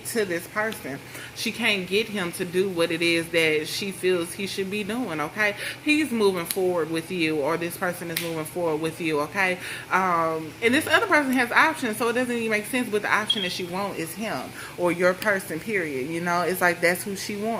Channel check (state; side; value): identical; both; correlation 1.00